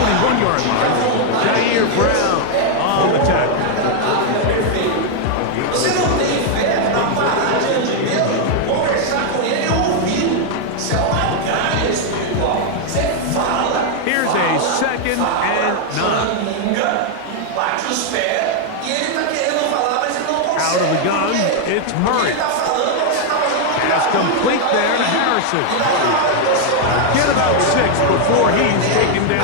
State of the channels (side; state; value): both; different; correlation 0.00